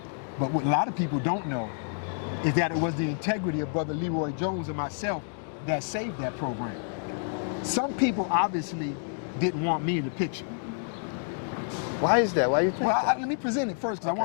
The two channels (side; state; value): right; silent; digital silence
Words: But what a lot of people don't know is that it was the integrity of Brother Leroy Jones and myself that saved that program. Some people obviously didn't want me in the picture. Why is that? Why you think? Well, let me present it first, because I